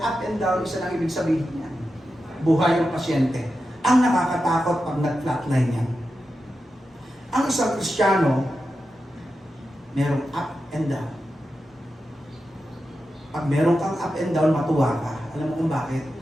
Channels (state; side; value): normal; both; correlation 0.90